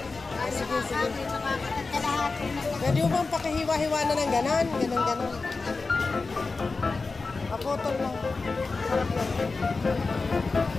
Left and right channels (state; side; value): quieter; right; 4.0 dB